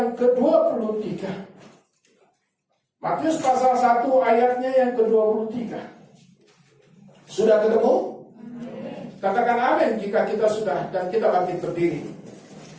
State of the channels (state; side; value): identical; both; correlation 1.00